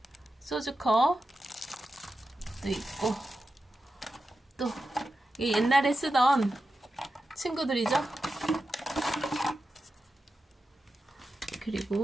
소주컵도 있고 또 옛날에 쓰던 친구들이죠.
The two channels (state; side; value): normal; both; correlation 0.91